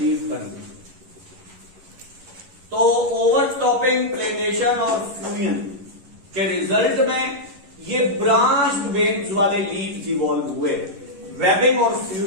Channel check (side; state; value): left; late; 11 ms